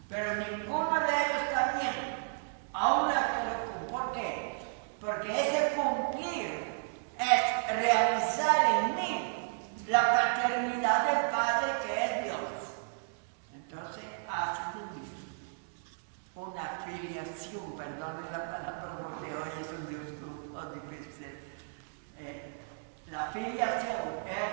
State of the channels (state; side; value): silent; left; 56 dB below the other